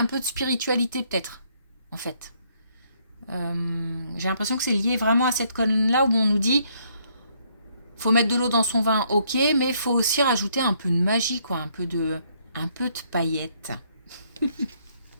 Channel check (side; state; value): both; inverted; correlation -0.69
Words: peu de spiritualité peut-être, en fait. J'ai l'impression que c'est lié vraiment à cette colonne-là où on nous dit faut mettre de l'eau dans son vin, ok, mais il faut aussi rajouter un peu de magie, quoi, un peu de paillettes.